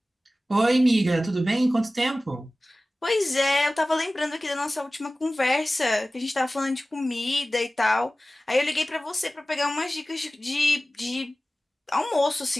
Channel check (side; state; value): both; normal; correlation 0.97